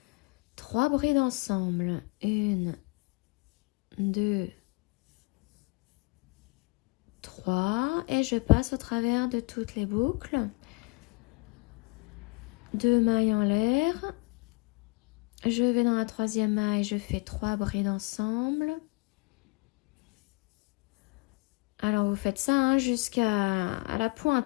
3 brides ensemble. 1, 2, 3. Et je passe au travers de toutes les boucles. 2 mailles en l'air. Je vais dans la troisième maille, je fais 3 brides ensemble. Alors vous faites ça hein, jusqu'à la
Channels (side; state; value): right; quieter; 28.8 dB